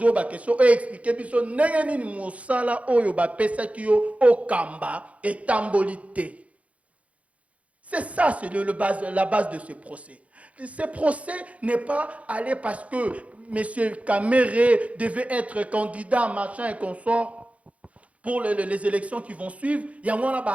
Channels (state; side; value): late; left; 0.065 ms